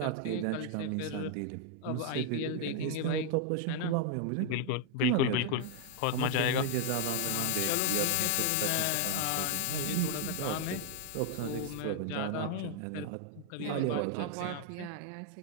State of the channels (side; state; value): both; different; correlation 0.00